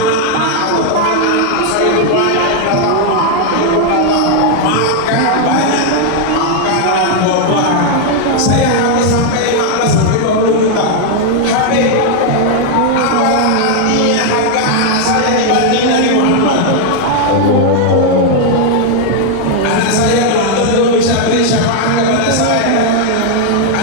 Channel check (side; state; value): both; different; correlation 0.00